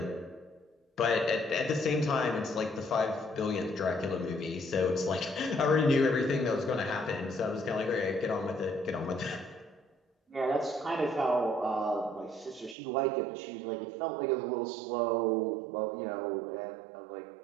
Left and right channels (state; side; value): drops out; left; at 12.8 s